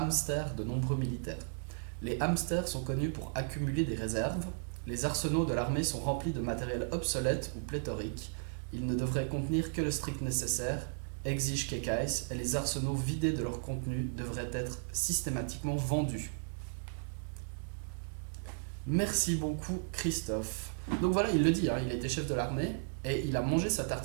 de nombreux militaires. Les hamsters sont connus pour accumuler des réserves. Les arsenaux de l'armée sont remplis de matériel obsolète ou pléthorique. Ils ne devraient contenir que le strict nécessaire, exige Kekais, et les arsenaux vidés de leur contenu devraient être systématiquement vendus. Merci beaucoup Christophe. Donc voilà, il le dit, il était chef de l'armée et il a mangé sa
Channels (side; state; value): left; silent; digital silence